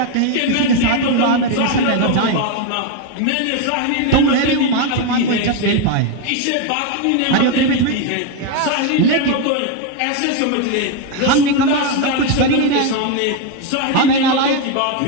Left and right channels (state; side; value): different; both; correlation 0.02